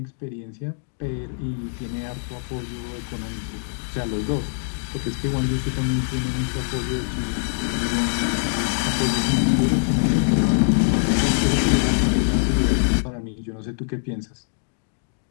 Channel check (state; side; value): silent; right; digital silence